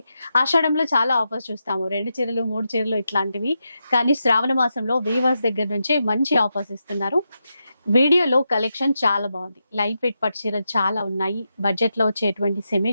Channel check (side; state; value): both; inverted; correlation -0.87